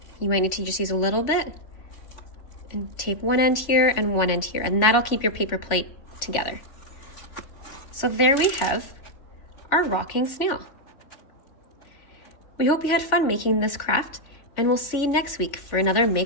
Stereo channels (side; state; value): right; late; 3.4 ms